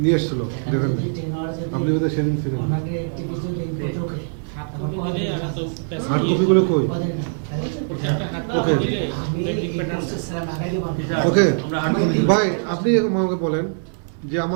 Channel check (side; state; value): left; silent; digital silence